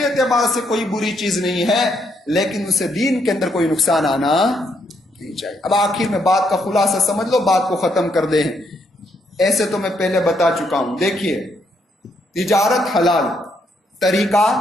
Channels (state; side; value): normal; both; correlation 0.75